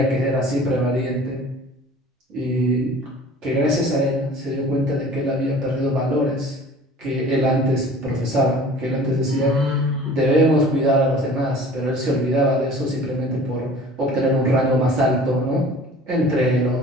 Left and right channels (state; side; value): normal; both; correlation 0.46